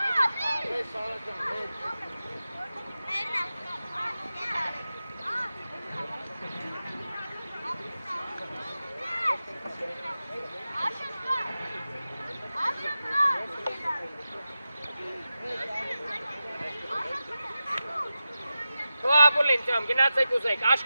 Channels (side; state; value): both; inverted; correlation -0.93